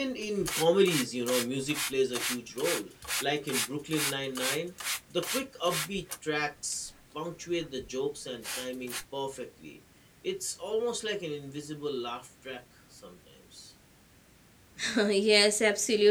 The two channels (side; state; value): both; identical; correlation 1.00